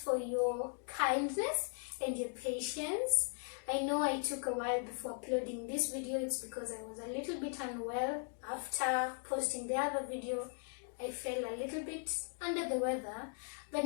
for your kindness and your patience. I know I took a while before uploading this video. It's because I was a little bit unwell. After posting the other video, I felt a little bit under the weather, but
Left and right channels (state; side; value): silent; right; 52 dB below the other